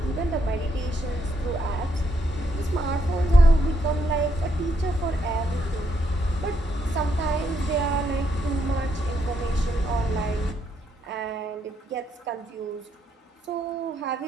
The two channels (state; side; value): normal; both; correlation 0.76